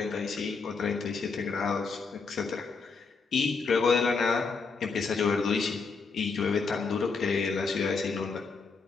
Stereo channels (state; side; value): quieter; right; 4.8 dB